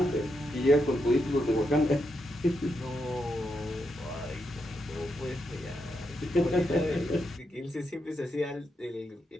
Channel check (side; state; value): both; normal; correlation 0.83